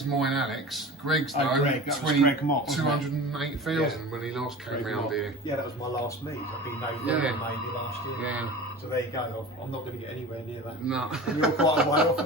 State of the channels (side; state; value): both; normal; correlation 0.35